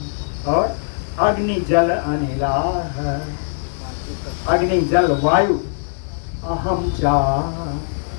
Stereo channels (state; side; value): silent; right; digital silence